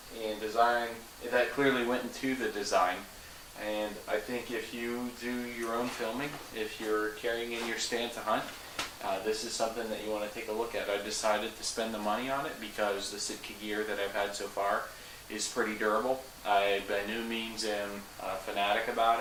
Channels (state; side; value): identical; both; correlation 1.00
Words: and design that clearly went into the design. And I think if you do your own filming, if you're carrying in your stand to hunt, this is something that you want to take a look at. I decided to spend the money on it because the Sitka gear that I've had so far is pretty durable. I by no means am a fanatic